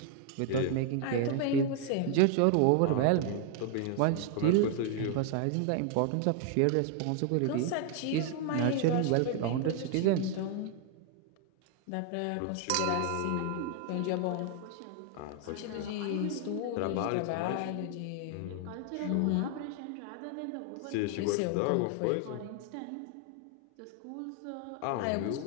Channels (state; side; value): different; both; correlation 0.00